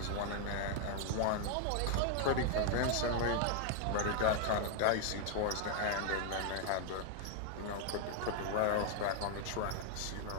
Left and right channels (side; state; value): both; different; correlation 0.00